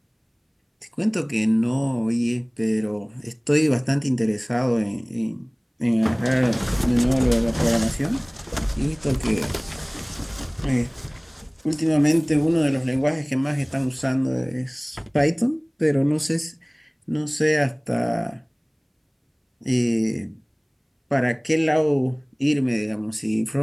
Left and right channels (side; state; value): both; identical; correlation 1.00